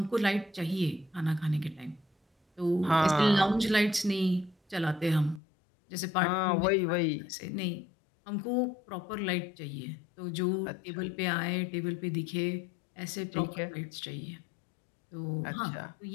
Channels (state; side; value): drops out; right; at 5.4 s